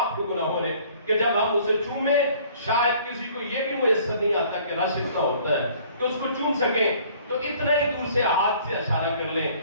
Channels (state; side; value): inverted; both; correlation -0.55